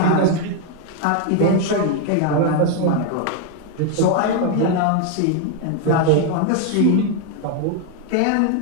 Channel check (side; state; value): both; different; correlation 0.01